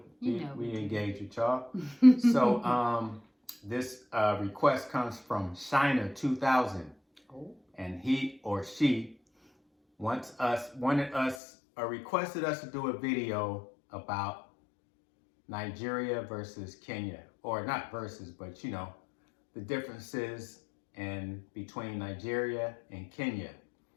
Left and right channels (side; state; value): right; drops out; at 11.4 s